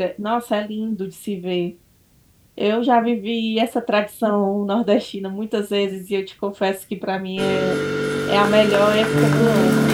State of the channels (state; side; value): identical; both; correlation 1.00